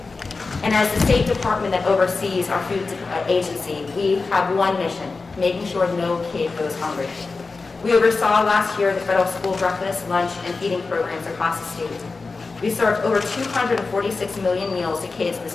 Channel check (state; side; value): quieter; right; 4.1 dB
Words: And as the State Department that oversees our food agency, we have one mission: making sure no kid goes hungry. We oversaw last year the federal school breakfast, lunch, and feeding programs across the state. We served over 246 million meals to kids